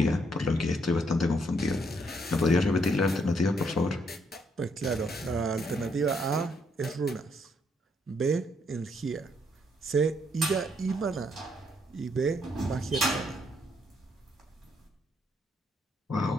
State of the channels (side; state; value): both; normal; correlation 0.72